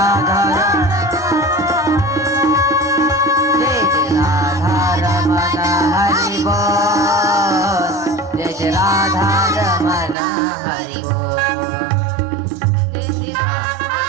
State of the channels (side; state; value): left; drops out; at 10.2 s